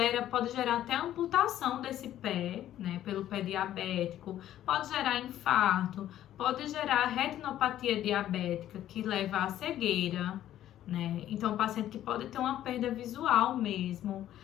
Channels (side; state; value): right; quieter; 12.3 dB